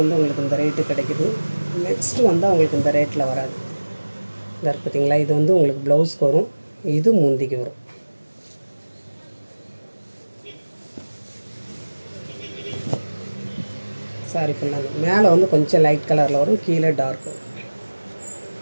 உங்களுக்கு இந்த ரேட்டு கிடைக்குது. நெக்ஸ்ட்டு வந்து அவங்களுக்கு இந்த ரேட்டில் வராது. இந்த பார்த்தீங்களா, இது வந்து உங்களுக்கு ப்ளவுஸ்க்கு வரும், இது முந்திக்கு வரும். சாரி ஃபுல்லாக மேலே வந்து கொஞ்சம் லைட் கலரில் வரும், கீழே டார்க் வரும்.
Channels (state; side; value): inverted; both; correlation -1.00